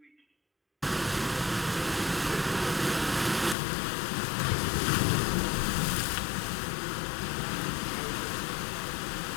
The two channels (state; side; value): drops out; right; at 3.6 s